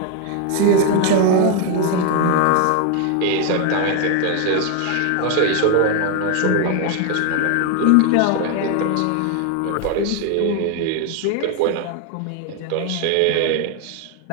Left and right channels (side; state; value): both; different; correlation 0.01